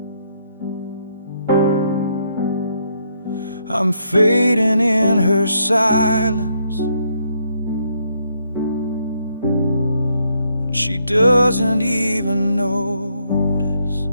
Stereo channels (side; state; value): both; inverted; correlation -0.74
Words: I'm fading in her silence, and she doesn't even notice.